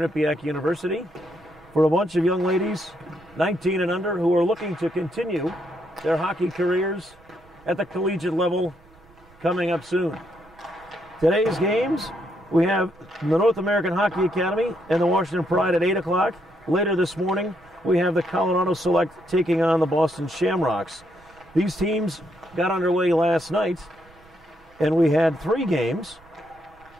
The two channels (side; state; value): right; noise; rumble, 28 dB below the sound